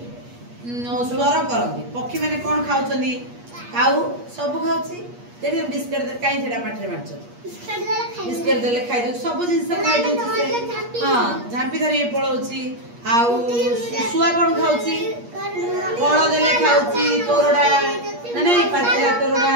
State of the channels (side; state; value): left; late; 8.4 ms